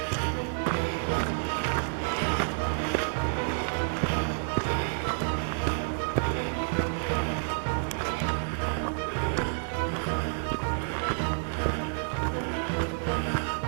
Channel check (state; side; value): silent; left; 58 dB below the other